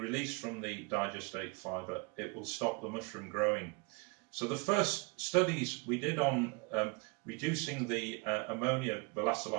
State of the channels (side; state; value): left; quieter; 30.5 dB